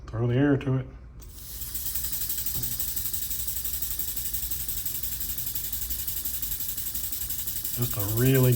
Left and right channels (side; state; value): both; identical; correlation 1.00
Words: throw the air to it. Just a really